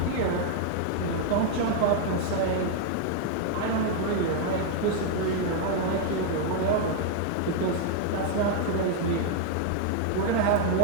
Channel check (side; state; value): both; different; correlation 0.00